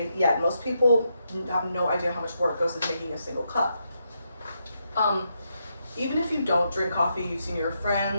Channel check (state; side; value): inverted; both; correlation -0.81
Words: yet most people have no idea how much work goes into making a single cup. Even if you don't drink coffee, you've seen your